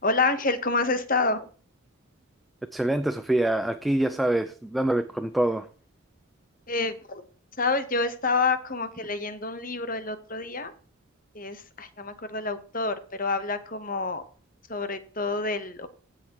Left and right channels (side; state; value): both; normal; correlation 0.22